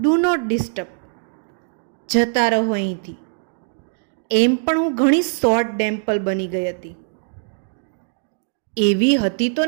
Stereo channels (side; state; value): left; silent; digital silence